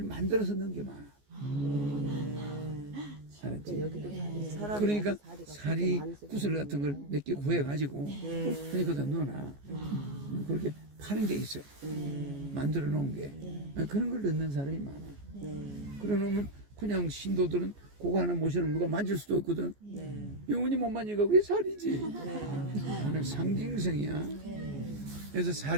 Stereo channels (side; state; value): left; late; 14 ms